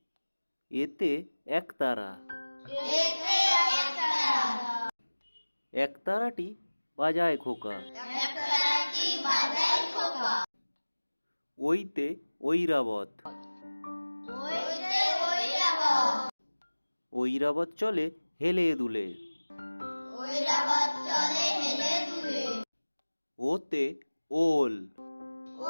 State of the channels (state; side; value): inverted; both; correlation -1.00